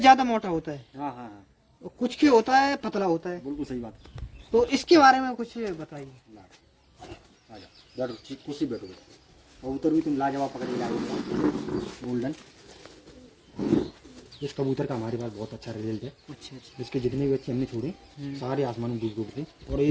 मोटा होता है, हाँ हाँ हाँ, और कुछ के होता है पतला होता है। बिल्कुल सही बात। तो इसके बारे में कुछ बताइए। आ जाओ, बैठो, ठीक कुर्सी बैठो। कबूतर भी तुम लाजवाब पकड़ के लाए गोल्डन। इस कबूतर का हमारे पास बहुत अच्छा रिजल्ट है। अच्छा अच्छा इसके जितने भी बच्चे हमने छोड़े सारे आसमान में डूब थे, और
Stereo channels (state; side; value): identical; both; correlation 1.00